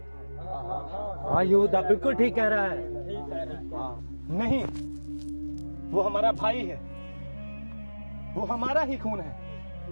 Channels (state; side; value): inverted; both; correlation -1.00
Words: हाँ यहूदा बिल्कुल ठीक कह रहा है। नहीं, वो हमारा भाई है, वो हमारा ही खून